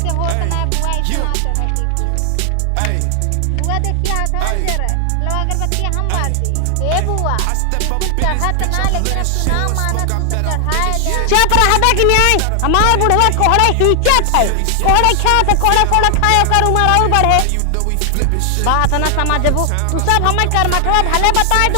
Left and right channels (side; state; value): both; different; correlation 0.00